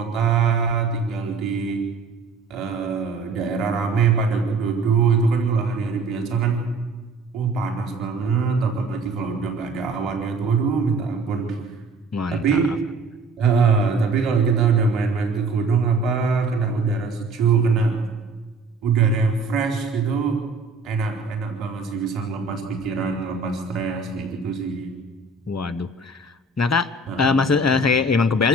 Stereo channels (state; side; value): quieter; left; 3.2 dB